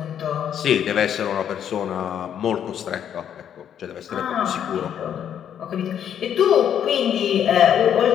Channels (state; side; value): quieter; right; 9.3 dB